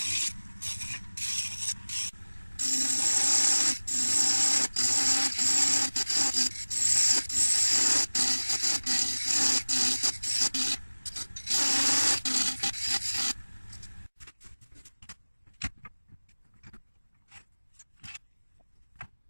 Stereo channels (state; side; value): inverted; both; correlation -1.00